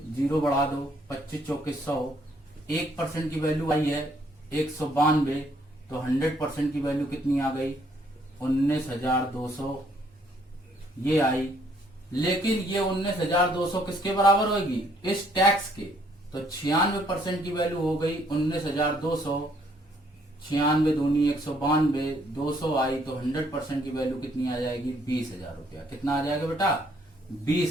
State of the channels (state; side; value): normal; both; correlation 0.66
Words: 0 बढ़ा दो, 25 चौके 100। 1% की वैल्यू आई है 192, तो 100% की वैल्यू कितनी आ गई, 19,200 ये आई। लेकिन ये 19,200 किसके बराबर होगी, इस टैक्स के। तो 96% की वैल्यू हो गई 19,200, 96 दूनी 192, 200 आई, तो 100% की वैल्यू कितनी आ जाएगी, 20,000 रुपया। कितना आ जाएगा बेटा,